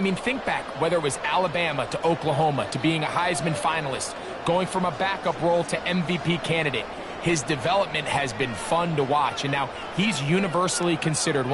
mean, think back, whether it was Alabama to Oklahoma to being a Heisman finalist, going from a backup role to MVP candidate. His development has been fun to watch, and now he's universally considered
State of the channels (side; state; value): both; identical; correlation 1.00